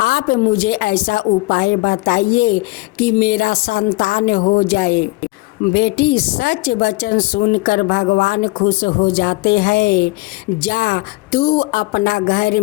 मुझे ऐसा उपाय बताइए कि मेरा संतान हो जाए। बेटी, सच वचन सुनकर भगवान खुश हो जाते हैं। जा, तू अपना घर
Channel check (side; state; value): right; quieter; 23.4 dB